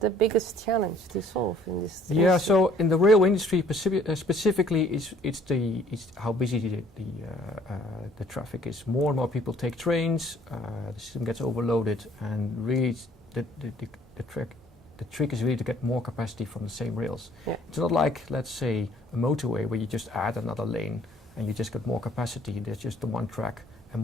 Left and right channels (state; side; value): normal; both; correlation 0.58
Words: biggest challenge to solve in this? Yeah. So in the railway industry specifically, it's how busy the traffic is. More and more people take trains. The system gets overloaded, and really the trick is really to get more capacity from the same rails. Yeah. It's not like, let's say, a motorway where you just add another lane and you just get more capacity. There's just the one track, and